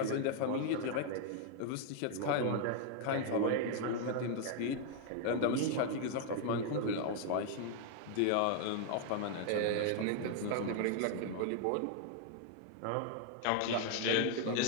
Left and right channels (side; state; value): both; different; correlation 0.00